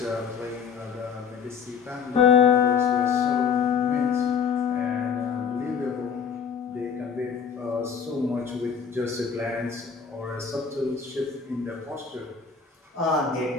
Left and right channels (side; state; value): right; quieter; 6.4 dB